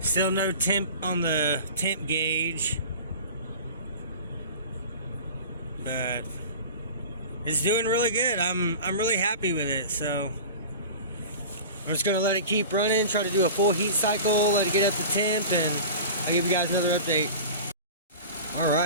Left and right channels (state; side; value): inverted; both; correlation -0.36